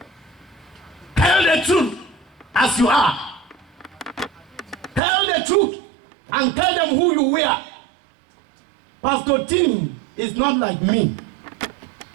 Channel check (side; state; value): left; drops out; at 5.0 s